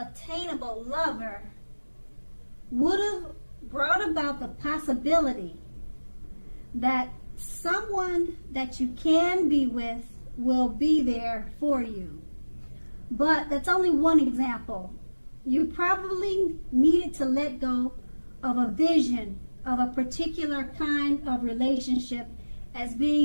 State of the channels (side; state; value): both; inverted; correlation -1.00